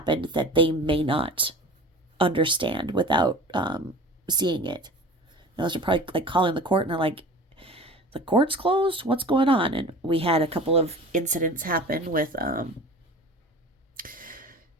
that they may not understand without seeing it. Those are probably like calling the court and they're like, the court's closed? What's going on? And we had a couple of incidents happen with, I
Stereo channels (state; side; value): normal; both; correlation 0.39